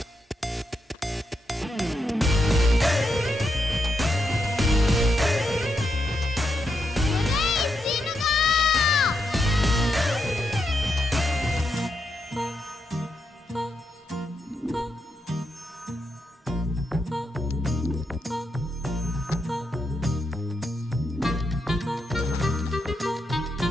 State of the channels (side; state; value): both; normal; correlation 0.83